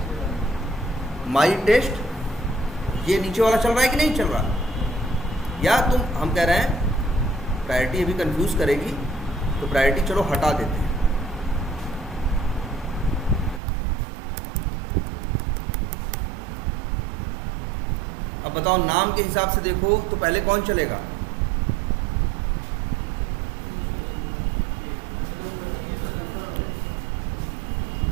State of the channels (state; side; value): drops out; left; at 13.6 s